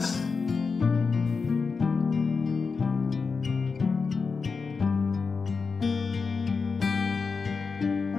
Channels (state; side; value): quieter; right; 4.9 dB